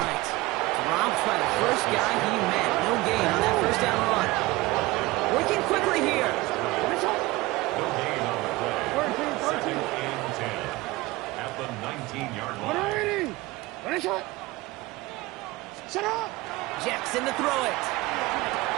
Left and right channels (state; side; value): quieter; left; 20.5 dB